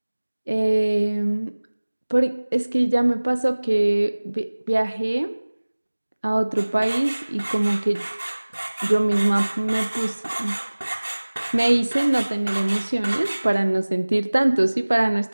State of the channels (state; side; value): inverted; both; correlation -1.00